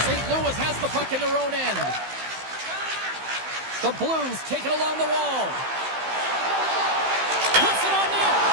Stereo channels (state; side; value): late; left; 15 ms